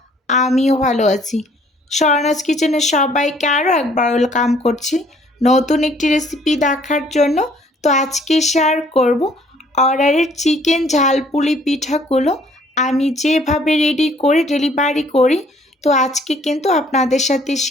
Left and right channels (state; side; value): normal; both; correlation 0.60